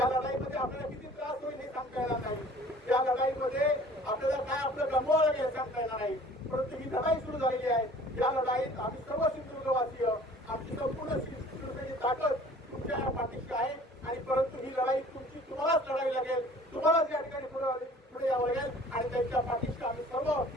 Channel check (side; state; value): both; normal; correlation 0.49